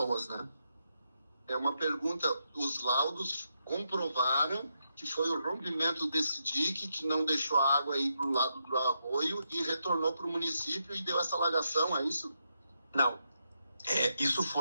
né? É uma pergunta, os laudos comprovaram que foi o rompimento desse dique que não deixou a água ir para o lado do arroio e retornou para o município e deu essa alagação, é isso? Não. Isso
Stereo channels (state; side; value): inverted; both; correlation -0.83